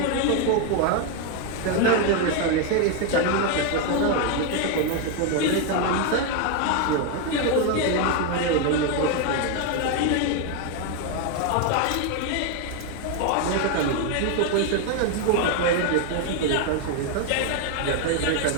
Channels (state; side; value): different; both; correlation 0.01